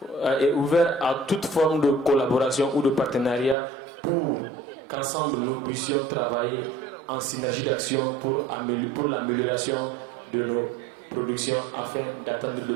toute forme de collaboration ou de partenariat pour qu'ensemble nous puissions travailler en synergie d'action pour l'amélioration de nos productions afin d'atteindre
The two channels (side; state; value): left; drops out; at 3.6 s